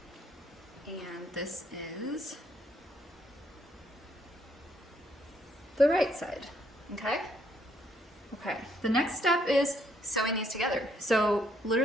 and this is the right side, okay? Okay, the next step is sewing these together. So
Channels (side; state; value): both; normal; correlation 0.70